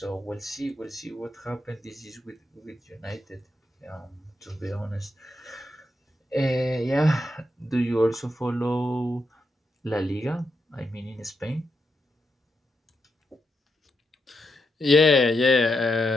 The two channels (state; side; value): normal; both; correlation 0.83